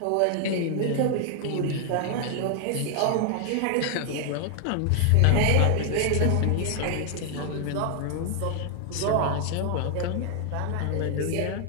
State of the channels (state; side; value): different; both; correlation 0.00